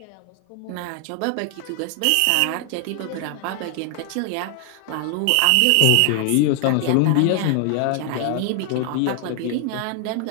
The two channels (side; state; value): both; different; correlation 0.00